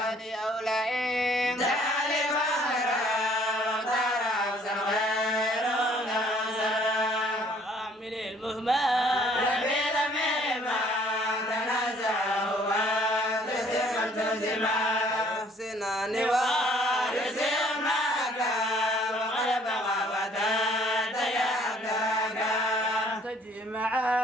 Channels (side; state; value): both; normal; correlation 0.59